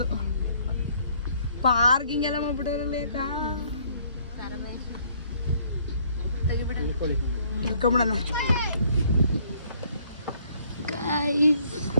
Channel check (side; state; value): both; inverted; correlation -0.63